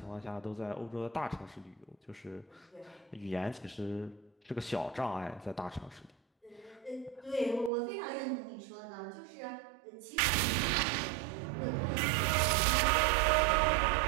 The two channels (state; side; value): drops out; left; at 7.7 s